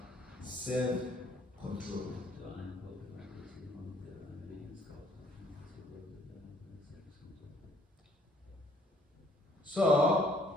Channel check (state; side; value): normal; both; correlation 0.62